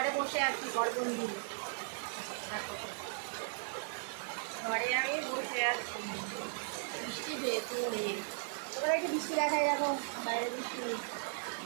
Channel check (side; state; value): left; silent; 53 dB below the other